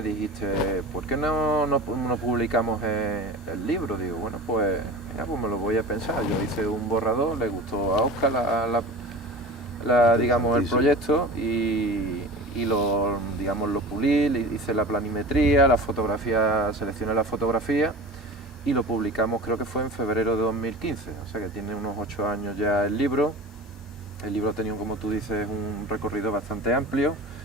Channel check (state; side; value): normal; both; correlation 0.35